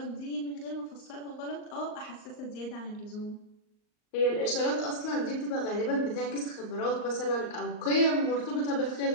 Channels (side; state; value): right; late; 38 ms